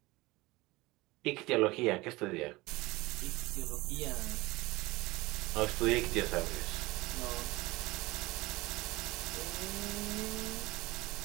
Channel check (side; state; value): left; quieter; 21.4 dB